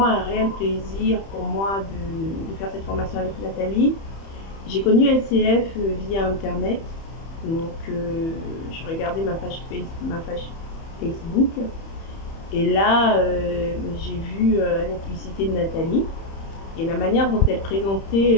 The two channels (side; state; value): right; late; 31 ms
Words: un réel plaisir pour moi de faire cette formation avec Nathalie. J'ai connu LCF via Internet. Donc, je regardais ma page Facebook. Et là, j'ai vu la publicité de Nathalie. Et la manière dont elle